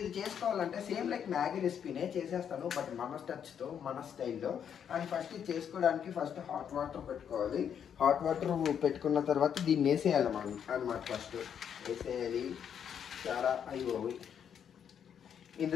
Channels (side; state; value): right; quieter; 8.3 dB